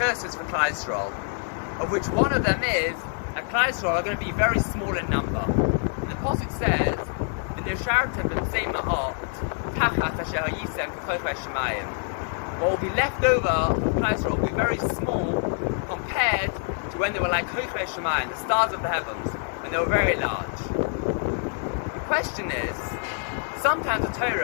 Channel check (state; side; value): silent; right; 61 dB below the other